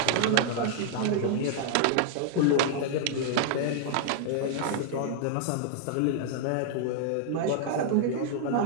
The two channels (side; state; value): both; different; correlation -0.01